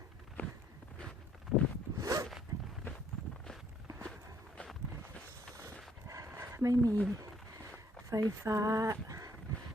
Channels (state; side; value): normal; both; correlation 0.65